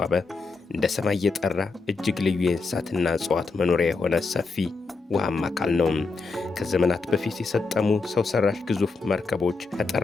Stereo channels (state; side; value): quieter; right; 4.1 dB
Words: እንደ ሰማይ የጠራ እጅግ ልዩ የእንስሳትና እጽዋት መኖሪያ የሆነ ሰፊ ውሃማ አካል ነው። ከዘመናት በፊት የሰጠሙ ሰው ሰራሽ ግዙፍ መርከቦች